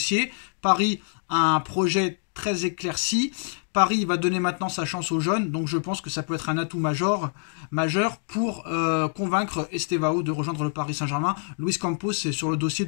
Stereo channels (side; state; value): right; silent; 61 dB below the other